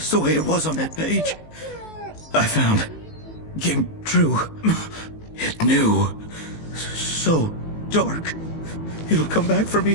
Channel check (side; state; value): right; late; 19 ms